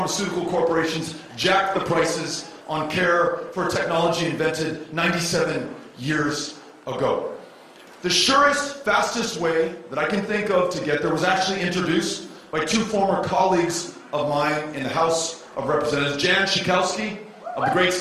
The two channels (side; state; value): both; identical; correlation 1.00